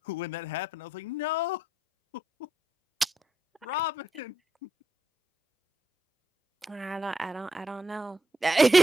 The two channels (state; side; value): normal; both; correlation 0.80